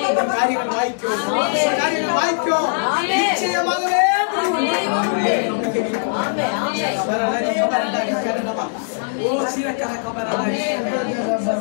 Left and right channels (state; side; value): silent; right; digital silence